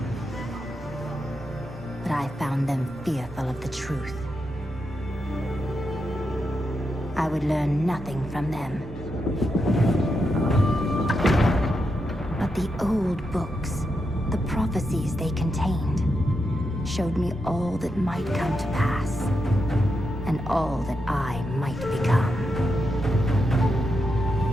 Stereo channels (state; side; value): normal; both; correlation 0.85